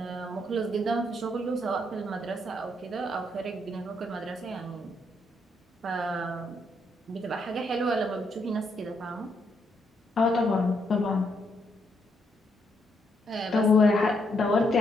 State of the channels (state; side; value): normal; both; correlation 0.76